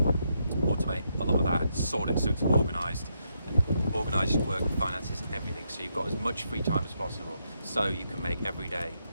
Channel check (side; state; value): both; inverted; correlation -0.80